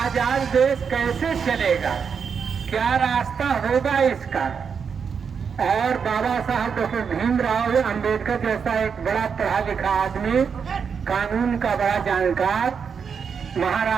देश कैसे चलेगा, क्या रास्ता होगा इसका। और बाबा साहब डॉक्टर भीमराव अंबेडकर जैसा एक बड़ा पढ़ा लिखा आदमी, कानून का बड़ा जानकार,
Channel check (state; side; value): quieter; left; 6.4 dB